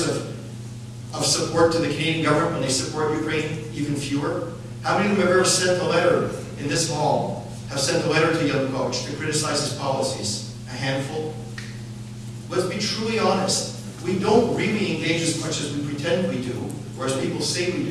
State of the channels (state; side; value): identical; both; correlation 1.00